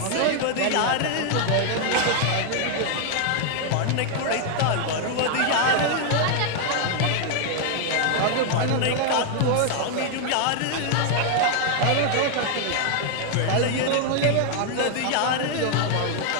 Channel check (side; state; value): both; different; correlation 0.00